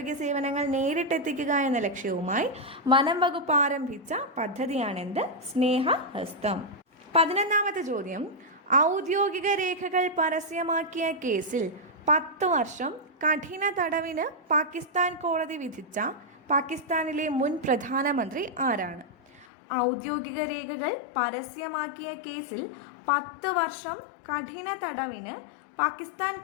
സേവനങ്ങൾ നേരിട്ടെത്തിക്കുക എന്ന ലക്ഷ്യവുമായി വനം വകുപ്പ് ആരംഭിച്ച പദ്ധതിയാണെന്ത്? സ്നേഹഹസ്തം. 11ാമത്തെ ചോദ്യം, ഔദ്യോഗിക രേഖകൾ പരസ്യമാക്കിയ കേസിൽ 10 വർഷം കഠിന തടവിന് പാകിസ്ഥാൻ കോടതി വിധിച്ച പാകിസ്ഥാനിലെ മുൻ പ്രധാനമന്ത്രി ആരാണ്? ഔദ്യോഗിക രേഖകൾ പരസ്യമാക്കിയ കേസിൽ 10 വർഷം കഠിന തടവിന് പാകിസ്ഥാൻ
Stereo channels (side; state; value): right; drops out; at 19.5 s